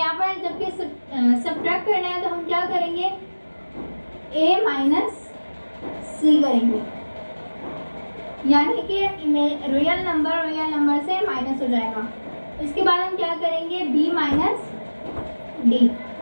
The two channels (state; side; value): inverted; both; correlation -1.00